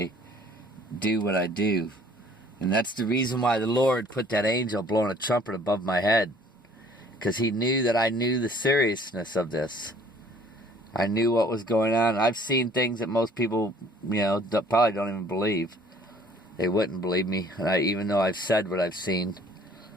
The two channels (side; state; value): both; normal; correlation 0.55